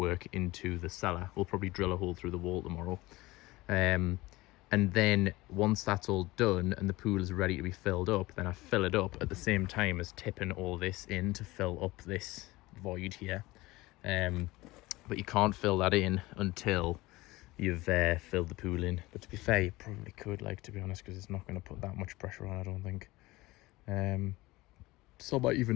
into the cellar. We'll probably drill a hole through the wall tomorrow. And then once that's all done and the pool is ready to be filled up, then I fill it up at the same time as tipping all this in to fill up this void here. But you can't fill that in until you've filled the pool in. But to be fair, you probably could, like, to be honest, because it's not going to put that much pressure on, I don't think. So I might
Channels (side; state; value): right; quieter; 20.0 dB